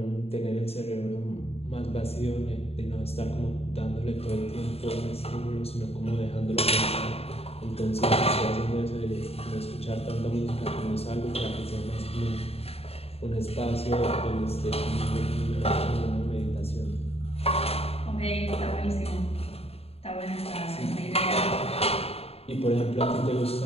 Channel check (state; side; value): late; right; 0.29 ms